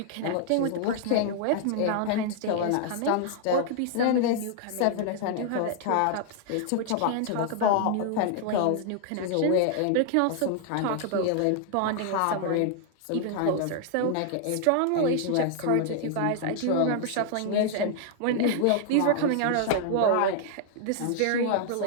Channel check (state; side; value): different; both; correlation 0.00